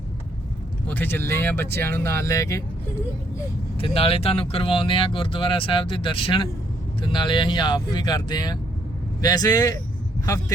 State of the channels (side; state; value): both; normal; correlation 0.70